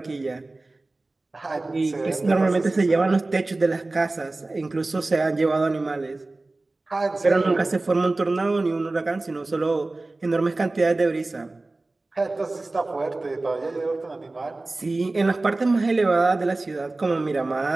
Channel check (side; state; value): left; quieter; 3.1 dB